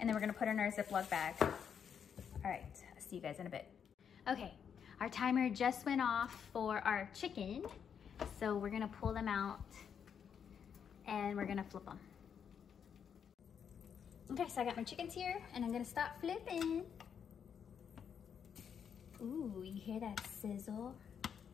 then we're gonna put it in our Ziploc bag. All right, I'll see you guys in a bit. Okay, our timer just went off for our chicken. So we're gonna pull them out and we're gonna flip them. Okay, so I got my chickens here and I'm gonna start flipping. Ooh, you hear that sizzle?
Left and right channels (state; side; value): quieter; right; 7.6 dB